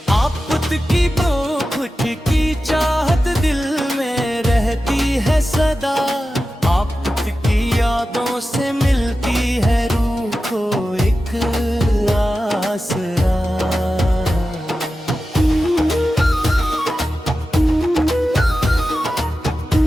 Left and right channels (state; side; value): normal; both; correlation 0.93